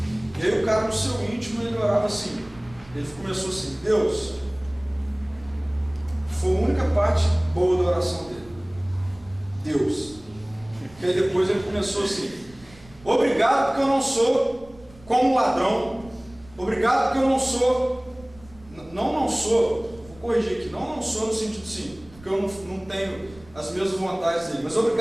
e aí o cara no seu íntimo, ele orava assim, ele começou assim: Deus, foi a única parte boa da oração dele, Deus. E aí depois ele começou assim: obrigado porque eu não sou como um ladrão. Obrigado porque eu não sou, vou corrigir aqui, não sou no sentido sim, porque eu não tenho as mesmas vontades dele, mas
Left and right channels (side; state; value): right; noise; rumble, 23 dB below the sound